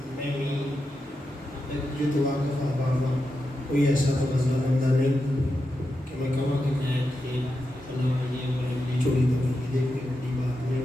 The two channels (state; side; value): normal; both; correlation 0.88